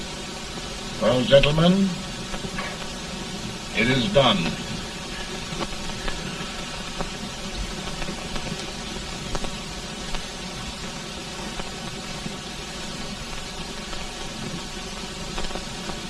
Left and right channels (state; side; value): identical; both; correlation 1.00